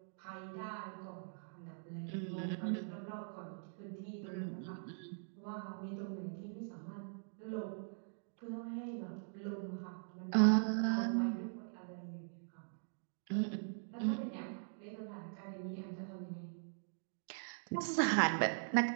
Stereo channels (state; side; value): silent; left; digital silence